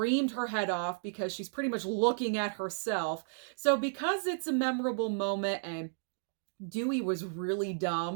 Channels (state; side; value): silent; left; digital silence